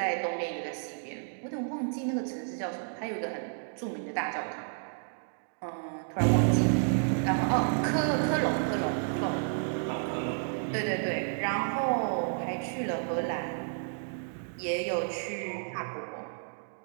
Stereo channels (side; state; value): left; silent; digital silence